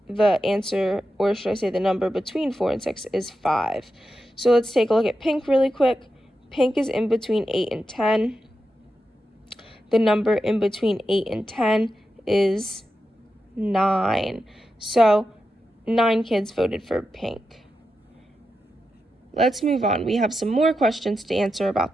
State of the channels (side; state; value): both; normal; correlation 0.89